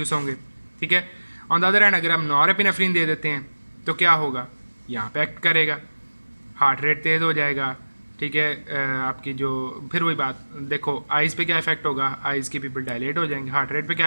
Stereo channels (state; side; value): inverted; both; correlation -1.00